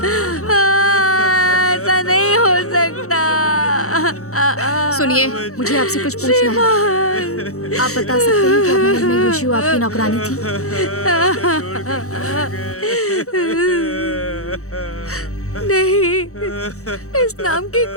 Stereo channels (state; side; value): late; right; 0.64 ms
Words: ऐसा नहीं हो सकता। सुनिए, मुझे आपसे कुछ पूछना है। आप बता सकते हैं क्या महल में यूशियो आपकी नौकरानी थी? नहीं, इस नाम की